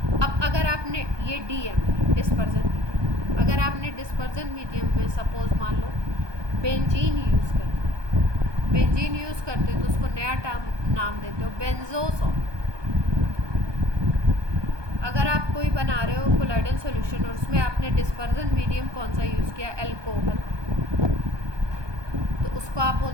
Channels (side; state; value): left; late; 1.2 ms